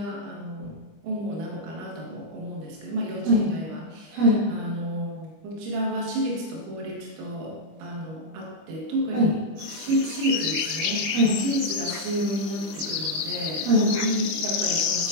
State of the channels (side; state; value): left; late; 25 ms